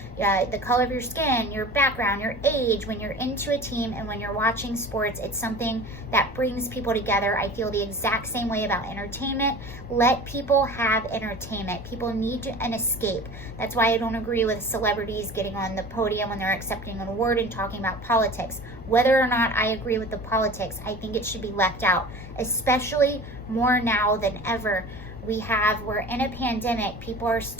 the color of your skin, your background, your age. When you're into a team and when you're watching sports, it's something that brings people together. I feel the exact same way about entertainment. Let people have entertainment. People need an escape. That's why I don't agree with celebrities getting on the podium when they're accepting an award and talking about politics. Whether or not I agree with the politics, I think it should be left out, especially more now than ever. We're in a pandemic, people are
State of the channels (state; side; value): noise; right; rumble, 24 dB below the sound